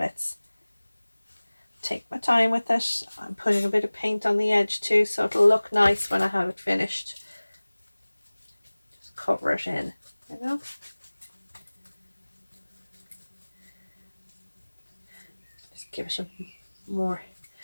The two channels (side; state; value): both; inverted; correlation -1.00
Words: Take my time with it. I'm putting a bit of paint on the edge too, so it'll look nice when I have it finished. Just cover it in, you know. Just give it a more